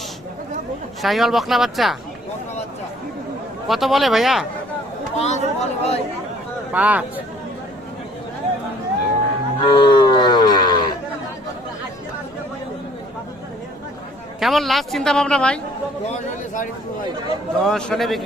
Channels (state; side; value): normal; both; correlation 0.58